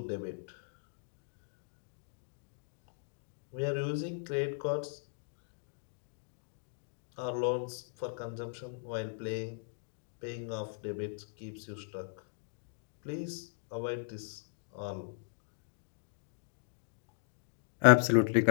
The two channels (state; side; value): silent; right; digital silence